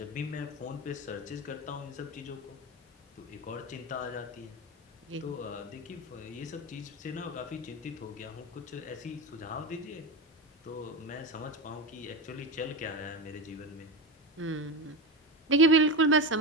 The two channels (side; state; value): both; normal; correlation 0.19